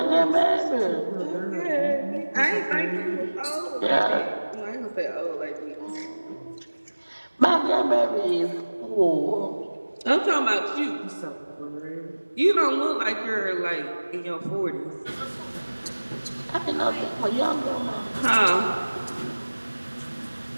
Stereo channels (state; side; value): inverted; both; correlation -1.00